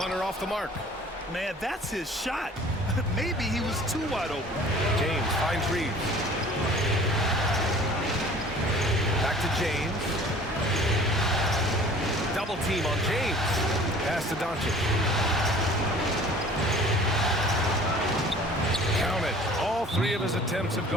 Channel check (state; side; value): normal; both; correlation 0.48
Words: off the mark. Man, that's his shot. Maybe he was too wide open. James finds Reeves. Back to James. Double team on James. Pass to Doncic. Count it. All 3 of his attempts have